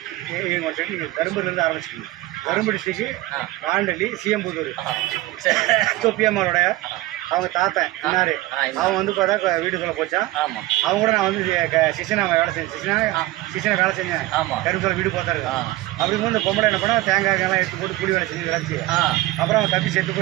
நீங்கள் வந்துட்டு நீங்கள் கரும்புலேருந்து ஆரம்பிச்சிக்கிங்க. கரும்பு டிஸ்ட்ரிக்ட்டு வாண்டலி சிஎம்புதூர் தொப்பியம்மாவோட அவங்க தாத்தன் இன்னாரு. அவன் வந்து பார்த்தா வீட்டுக்குள்ளே போச்சான். அவங்க கூட நான் வந்து சிசனா வேலை செஞ்சேன். சிசனை வேலை செஞ்சேன். கரும்புல வீடு பார்த்தாரு. அப்படிங்கும்போது இந்த பொம்பளை என்ன பண்ணா தேங்காய்லாம் எடுத்து போட்டு கூலி வேலை செஞ்சு விளைச்சி அப்புறம் அவன் தப்பி செத்து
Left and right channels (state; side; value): quieter; left; 18.0 dB